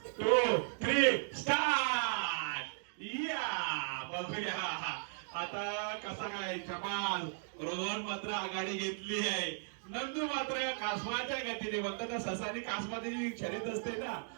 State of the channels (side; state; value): left; silent; digital silence